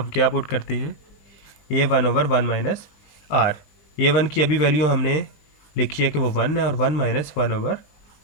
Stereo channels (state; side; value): late; right; 20 ms